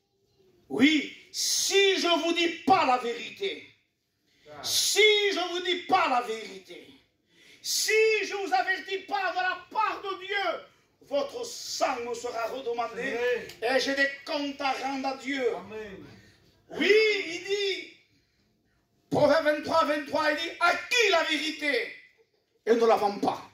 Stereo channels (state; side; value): identical; both; correlation 1.00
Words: Oui, si je ne vous dis pas la vérité, si je ne vous dis pas la vérité, si je ne vous avertis pas de la part de Dieu, votre sang me sera redemandé et j'ai des comptes à rendre à Dieu. Amen. Oui, il dit, Proverbe 23, 23, il dit, à qui la vérité? Et ne la vend pas.